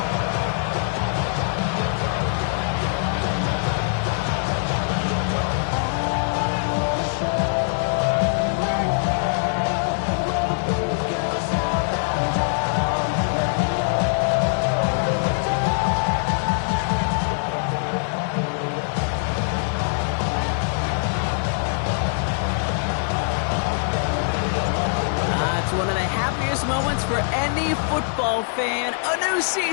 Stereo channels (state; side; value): silent; right; 63 dB below the other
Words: Moments for any football fan. A new